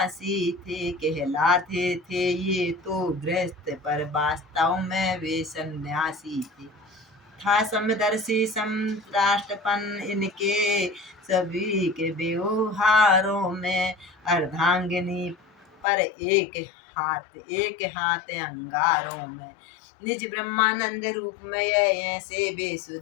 थे, कहलाते थे ये तो गृहस्थ, पर वास्तव में वे सन्यासी थे। था समदर्शी समराष्ट्रपन इनके सभी के व्यवहारों में, अर्धांगिनी पर एक हाथ अंगारों में, निज ब्रह्मानंद रूप में ऐसे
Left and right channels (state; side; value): drops out; right; at 15.9 s